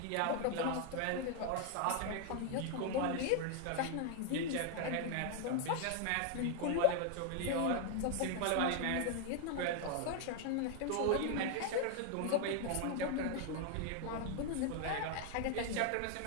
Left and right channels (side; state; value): both; different; correlation 0.00